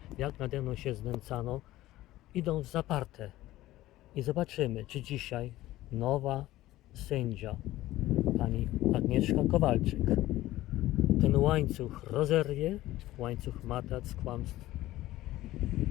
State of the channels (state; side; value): quieter; right; 16.1 dB